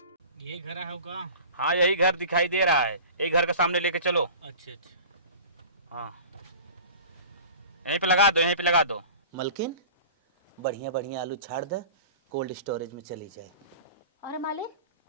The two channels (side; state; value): both; inverted; correlation -0.40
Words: ये घर है होगा? हाँ यही घर दिखाई दे रहा है। यही घर के सामने लेके चलो। अच्छा अच्छा। हाँ यहीं पे लगा दो, यहीं पे लगा दो। मलकिन बढ़िया बढ़िया आलू छाड़ दे, कोल्ड स्टोरेज में चली जाए। अरे मालिक